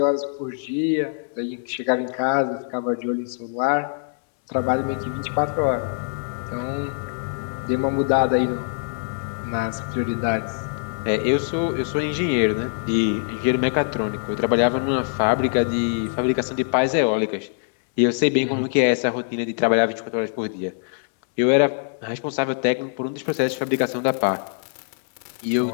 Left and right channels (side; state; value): right; silent; 63 dB below the other